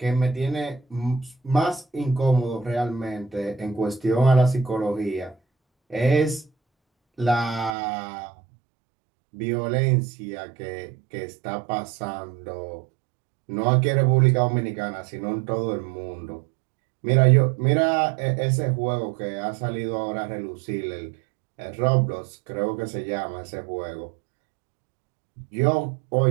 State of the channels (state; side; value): drops out; left; at 7.7 s